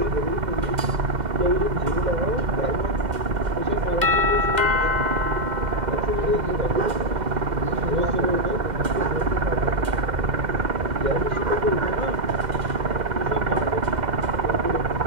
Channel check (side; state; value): left; late; 2.0 ms